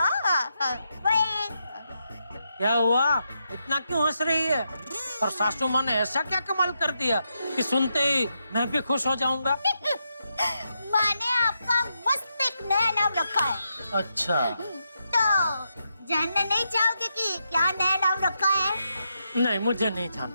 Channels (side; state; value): both; inverted; correlation -0.83